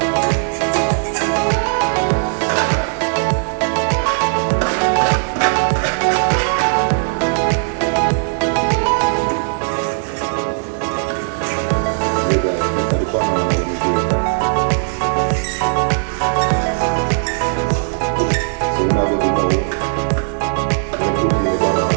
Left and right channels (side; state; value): left; silent; digital silence